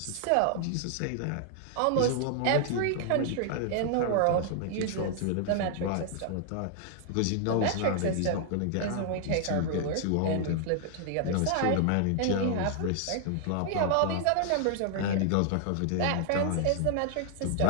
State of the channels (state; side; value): different; both; correlation 0.00